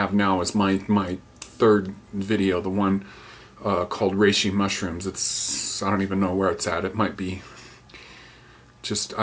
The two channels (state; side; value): identical; both; correlation 1.00